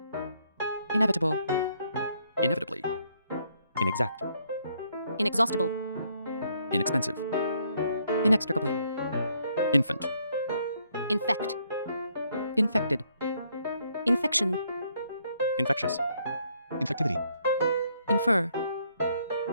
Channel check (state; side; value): inverted; both; correlation -0.71